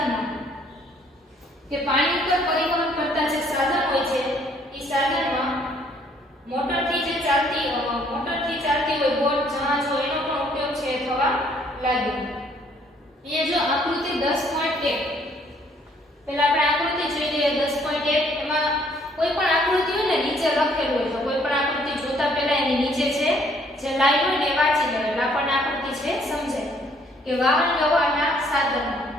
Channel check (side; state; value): both; normal; correlation 0.63